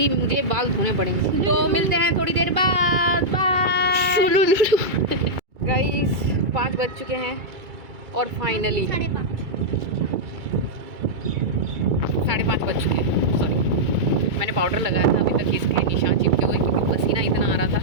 मुझे बाल धोने पड़ेंगे। तो मिलते हैं थोड़ी देर बाद, बाय। गाइस 5 बज चुके हैं और फाइनली 5:30 बज चुके हैं। सॉरी, मैंने पाउडर लगाया था, अभी तक इसके निशान चिपके हुए क्योंकि पसीना इतना आ रहा था।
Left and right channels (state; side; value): late; left; 2.3 ms